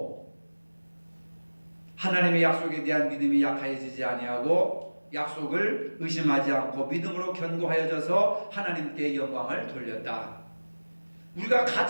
하나님의 약속에 대한 믿음이 약해지지 아니하고 약속을 의심하지 않고 믿음으로 견고하여져서 하나님께 영광을 돌렸다. 우리가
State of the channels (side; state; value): both; inverted; correlation -1.00